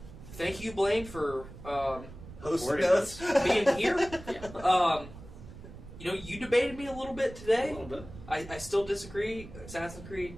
Thank you, Blaine, for Hosting us. being here. Yeah. You debated me a little bit today. A little bit. I still disagree. Assassin's Creed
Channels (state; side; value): noise; right; rumble, 15 dB below the sound